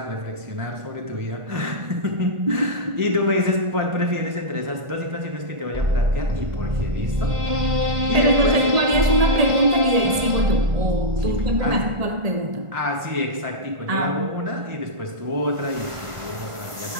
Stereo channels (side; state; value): left; late; 1.5 ms